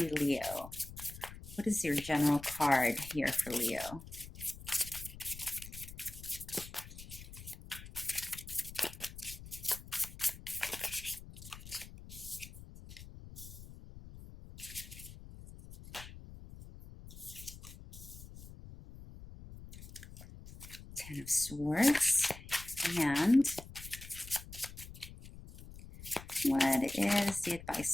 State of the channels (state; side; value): noise; left; rumble, 14 dB below the sound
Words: Leo. What is your general card here for Leo? Ten of Swords. And what is the